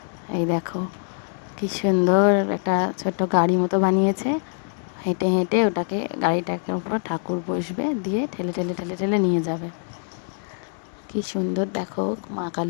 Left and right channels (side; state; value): right; silent; digital silence